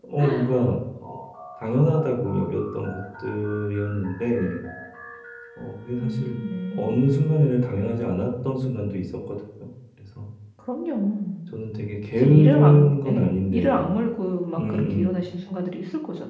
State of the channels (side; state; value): both; identical; correlation 1.00